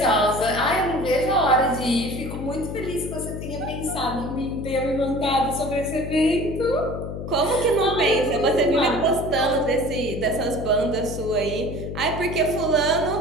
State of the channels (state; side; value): noise; left; hum, 7 dB below the sound